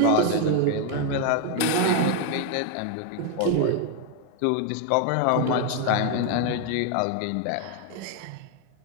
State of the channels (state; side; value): different; both; correlation 0.00